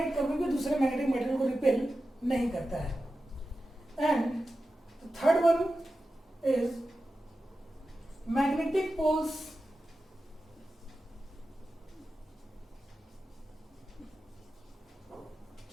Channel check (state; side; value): normal; both; correlation 0.93